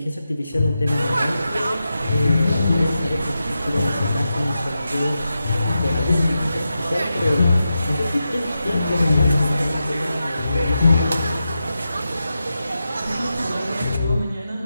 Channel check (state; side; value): inverted; both; correlation -0.90